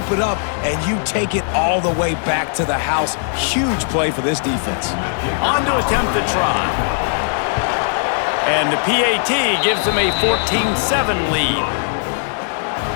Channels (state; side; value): silent; right; 67 dB below the other